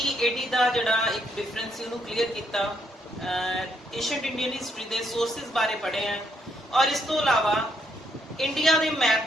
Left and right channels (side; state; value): both; normal; correlation 0.74